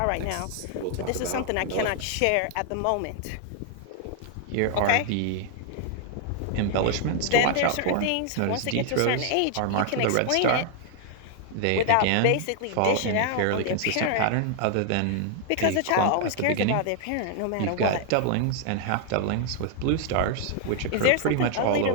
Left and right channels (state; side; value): different; both; correlation 0.00